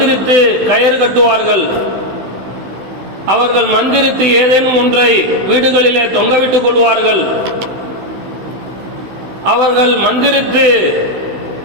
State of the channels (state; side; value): late; left; 16 ms